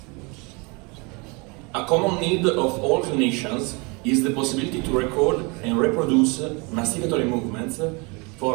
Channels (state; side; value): quieter; left; 29.3 dB